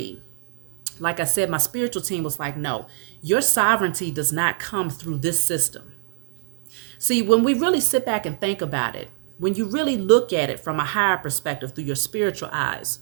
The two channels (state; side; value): silent; left; digital silence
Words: like I said, my spiritual team was like, no, your sovereignty does not come through this system. See, when we really sit back and think about it, when you really look at it from a higher perspective through your spiritual eyes,